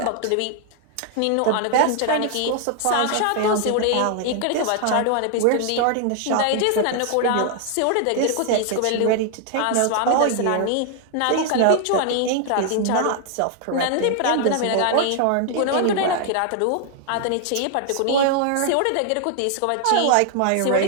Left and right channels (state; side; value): different; both; correlation 0.00